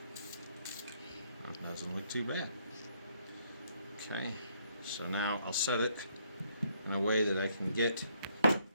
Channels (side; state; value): both; inverted; correlation -0.70